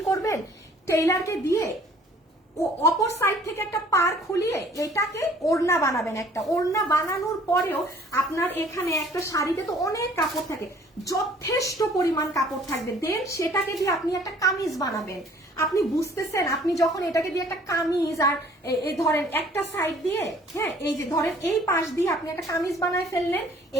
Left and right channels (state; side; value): normal; both; correlation 0.55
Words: করবেন, টেইলারকে দিয়ে ও অপর সাইড থেকে একটা পার খুলিয়ে এটাকে ওড়না বানাবেন। একটা ওড়না বানানোর পরেও আপনার এখানে একটা শাড়িতে তো অনেক কাপড় থাকে, যথেষ্ট পরিমাণ কাপড় থাকবে, দেন সেটাকে দিয়ে আপনি একটা কামিজ বানাবেন। আপনি বুঝতেছেন, আপনি যখন এটাকে দিয়ে একটা কামিজ আর এই ধরেন একটা সাইড দিয়ে, হ্যাঁ এই যে ধরেন এই পাশ দিয়ে আপনি একটা কামিজ বানায় ফেললেন,